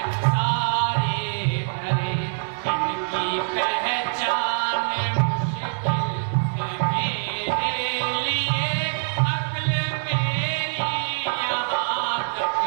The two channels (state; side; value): silent; left; 62 dB below the other